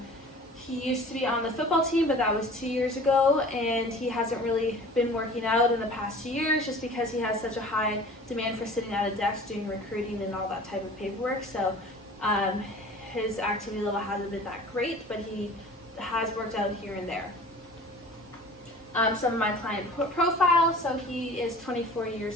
He used to be on the football team, but that was 2 years ago, and he hasn't really been working out in the past 2 years just because he has such a high demand for sitting at a desk doing recruiting and all that type of paperwork. So his activity level hasn't been that great, but he has worked out here and there. Some of my client profile, so he is 24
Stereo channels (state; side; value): normal; both; correlation 0.44